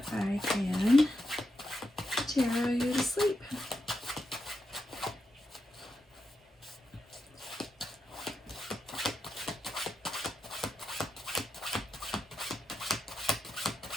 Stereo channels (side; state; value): both; normal; correlation 0.86